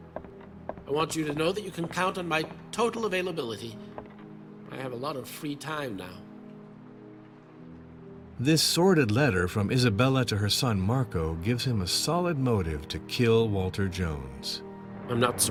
I want you to know that you can count on my total availability. I have a lot of free time now. This sordid letter from Isabella to her son Marco gives him a solid motive to kill Walter Jones. I'm not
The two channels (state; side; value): identical; both; correlation 1.00